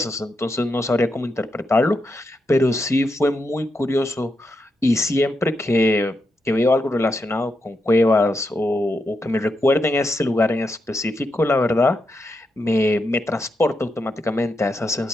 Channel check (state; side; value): normal; both; correlation 0.84